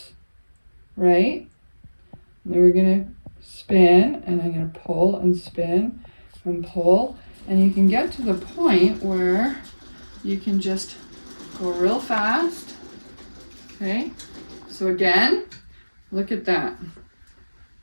right? And then we're going to spin, and I'm going to pull and spin and pull. And you can get to the point where you can just go real fast. Okay, so again, look at that.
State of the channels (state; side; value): inverted; both; correlation -1.00